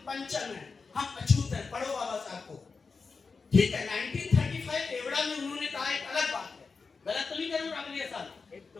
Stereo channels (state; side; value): quieter; right; 4.7 dB